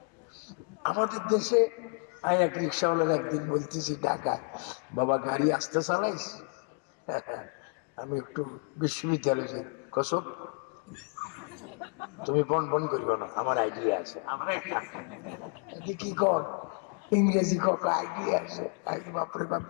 আমাদের দেশে এক রিক্সাওয়ালার একদিন বলতেছি ঢাকায়, বাবা গাড়ি আসতে চালাইস? আমি একটু বিশ্ববিদ্যালয়ে যাই। কসব তুমি বন বন করবে না, আমার আইডিয়া আছে। কি কর ইংরেজি কক আইডিয়া আছে। বাপরে বাপ,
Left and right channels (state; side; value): quieter; right; 39.6 dB